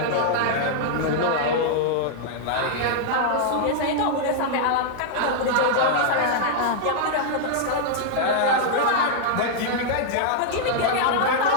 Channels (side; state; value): both; different; correlation -0.01